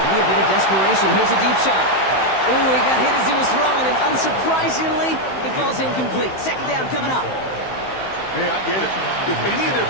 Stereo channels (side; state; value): right; late; 15 ms